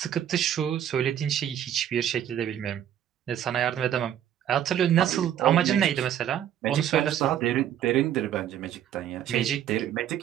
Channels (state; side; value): quieter; left; 10.4 dB